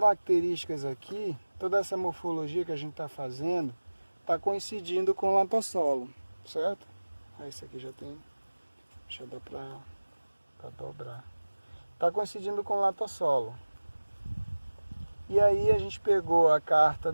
aqui, toda essa morfologia que a gente está fazendo, está coincidindo com o latossolo, certo? Aí esse aqui já tem, já dá para dobrar. Está coincidindo com o latossolo. E aí a gente pegou a carta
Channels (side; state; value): both; inverted; correlation -1.00